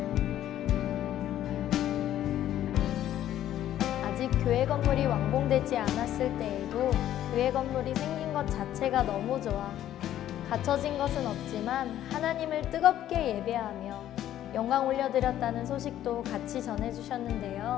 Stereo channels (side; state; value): right; quieter; 12.1 dB